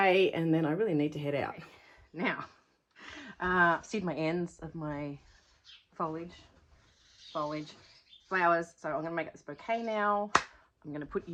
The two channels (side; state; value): both; identical; correlation 1.00